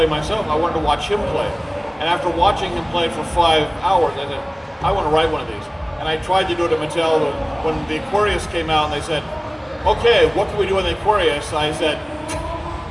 myself, I wanted to watch him play. And after watching him play for 5 hours, I said, I want to write one of these. And I tried to do it at Mattel, but when the Aquarius came out and they said, "Okay, what can we do in the Aquarius?" I said,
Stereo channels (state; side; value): identical; both; correlation 1.00